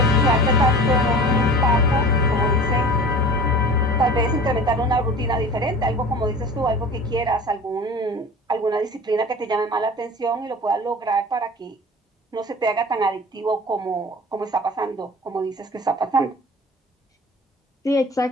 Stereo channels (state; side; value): normal; both; correlation 0.39